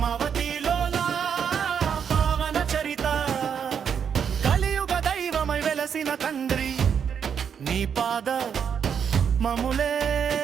లోలా పావన చరిత కలియుగ దైవమై వెలసిన తండ్రి నీ పాద మములే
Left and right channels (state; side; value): quieter; left; 7.5 dB